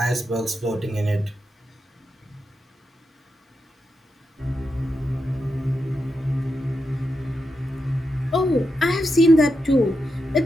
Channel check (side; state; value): both; normal; correlation 0.86